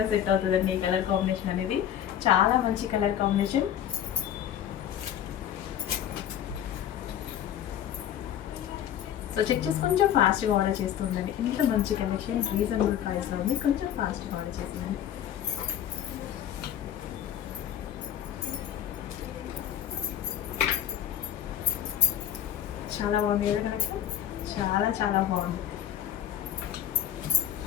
సెట్ అవుతుందండి ఈ కలర్ కాంబినేషన్ అనేది. చాలా మంచి కలర్ కాంబినేషన్. సో చెక్ చేసి కొంచెం ఫాస్ట్గా ఆర్డర్ చేస్తూ ఉండండి. ఇంత మంచి కలెక్షన్ రీజనబుల్ ప్రైస్లో ఉంది. కొంచెం ఫాస్ట్గా ఆర్డర్ చేస్తుందండి. చాలా బాగుంది కదా కలెక్షన్, చాలా చాలా బాగుంది.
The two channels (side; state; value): right; quieter; 10.3 dB